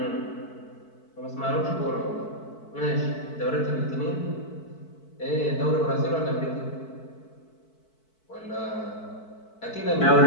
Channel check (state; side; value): late; right; 4.6 ms